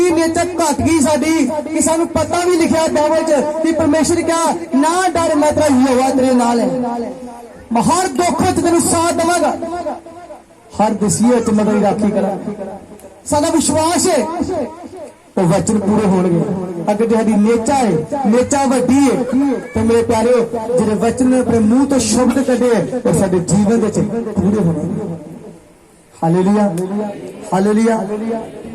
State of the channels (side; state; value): both; identical; correlation 1.00